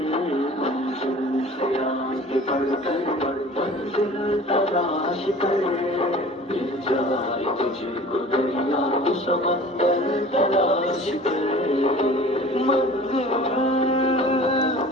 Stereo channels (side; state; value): both; normal; correlation 0.44